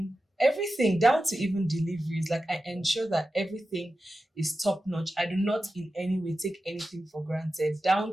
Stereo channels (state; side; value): normal; both; correlation 0.92